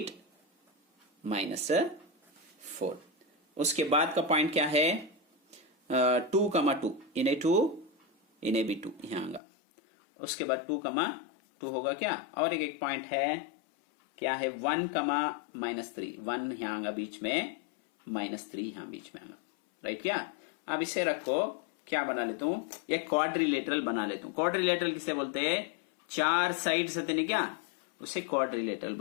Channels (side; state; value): right; drops out; at 9.4 s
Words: -4। उसके बाद का पॉइंट क्या है 2, इन्हें 2 इन्हें भी 2 यहां आऊंगा। उसके बाद 2, होगा क्या, और एक पॉइंट है क्या है 1, -3 1 यहां आऊंगा बीच में, -3 यहां बीच में आऊंगा, राइट क्या। अब इसे रखो, क्या बना लेता हूं, एक क्वाड्रिलेटरल बना लेता हूं। क्वाड्रिलेटरल किसे बोलते हैं, 4 साइड से नहीं क्या, उसे क्वाड्रिलेटरल